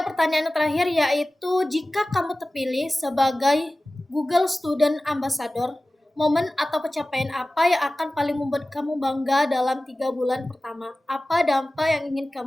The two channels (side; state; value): both; normal; correlation 0.97